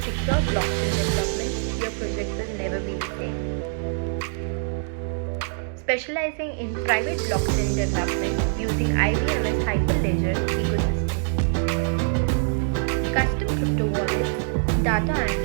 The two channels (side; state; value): left; silent; digital silence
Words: secure blockchain development, your project will never be the same. Specializing in private blockchain development using IBM's Hyperledger ecosystem. Custom crypto wallets, data